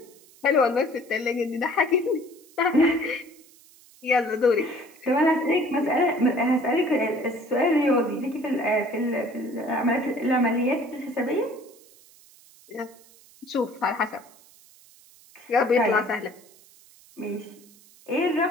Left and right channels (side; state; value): right; noise; hiss, 26 dB below the sound